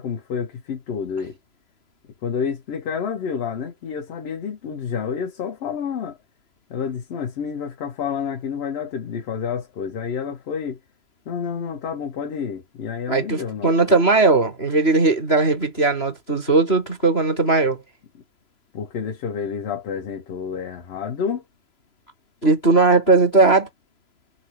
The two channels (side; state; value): right; late; 3.0 ms